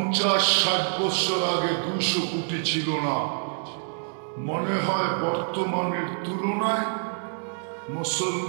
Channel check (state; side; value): silent; left; digital silence